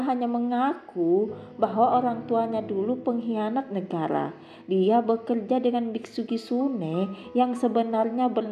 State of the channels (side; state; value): both; identical; correlation 1.00